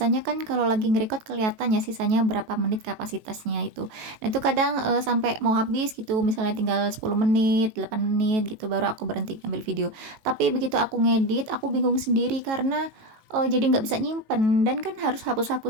kan kalau lagi ngerecord kelihatan ya sisanya berapa menit kapasitasnya itu. Nah itu kadang sampai mau habis gitu, misalnya tinggal 10 menit, 8 menit gitu baru aku berhenti ngambil video. Tapi begitu aku ngedit, aku bingung sendiri karena jadi nggak bisa nyimpen dan kan harus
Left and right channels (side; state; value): left; late; 18 ms